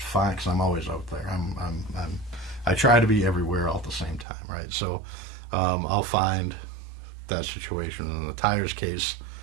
because I'm always out there. I try to be everywhere all at the same time, right? So I'll find that situation. In the tires case,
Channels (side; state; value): left; drops out; at 4.2 s